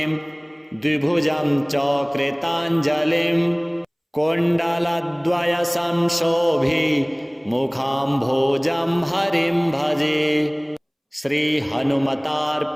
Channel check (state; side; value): identical; both; correlation 1.00